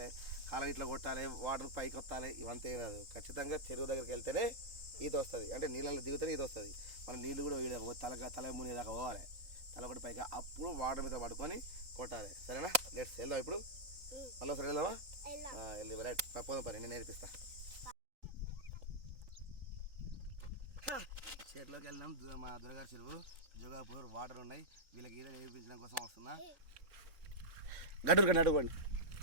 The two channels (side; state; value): left; late; 3.9 ms